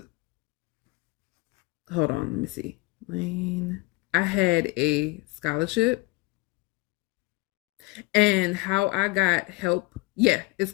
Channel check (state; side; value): quieter; right; 23.7 dB